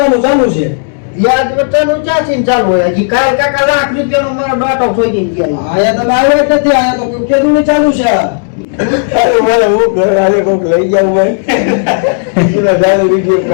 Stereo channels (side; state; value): right; silent; digital silence